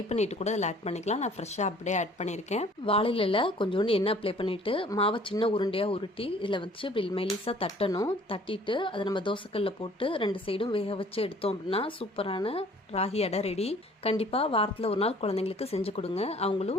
பண்ணிட்டு கூட அதில் ஆட் பண்ணிக்கலாம். நான் ஃப்ரெஷ்ஷாக அப்படியே ஆட் பண்ணியிருக்கேன். வாழையில கொஞ்சோண்டு எண்ணெய் அப்ளை பண்ணிட்டு மாவை சின்ன உருண்டையாக உருட்டி இதில் வச்சு இப்படி மெலிசாக தட்டணும். தட்டிட்டு அதை நம்ம தோசைக்கல்ல போட்டு 2 சைடும் வேக வச்சு எடுத்தோம் அப்படின்னா சூப்பரான ராகி அடை ரெடி. கண்டிப்பாக வாரத்தில் ஒரு நாள் குழந்தைங்களுக்கு செஞ்சு கொடுங்க.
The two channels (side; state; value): both; normal; correlation 0.54